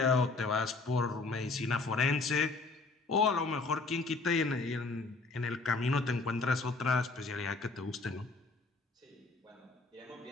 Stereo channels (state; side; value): quieter; right; 3.7 dB